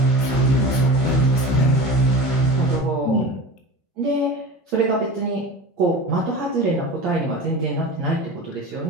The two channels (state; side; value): normal; both; correlation 0.32